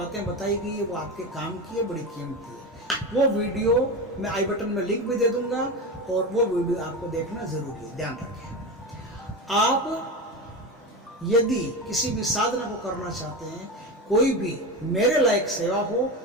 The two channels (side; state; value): both; normal; correlation 0.21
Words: बताई गई है वो आपके काम की है, बड़ी कीमती है। वो वीडियो मैं आई बटन में लिंक भी दे दूंगा, और वो वीडियो आपको देखना जरूरी है। ध्यान रखें, आप यदि किसी भी साधना को करना चाहते हैं, कोई भी मेरे लायक सेवा हो,